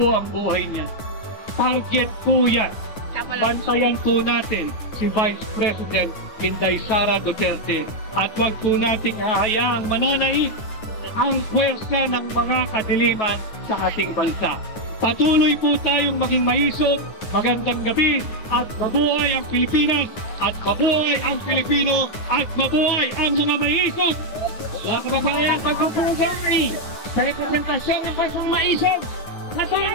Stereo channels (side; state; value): right; late; 9.6 ms